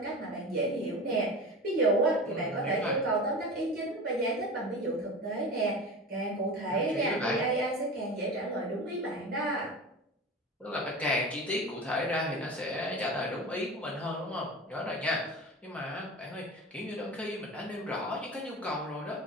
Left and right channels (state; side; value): normal; both; correlation 0.31